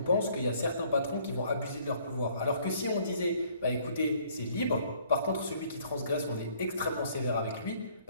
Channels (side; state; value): both; inverted; correlation -0.61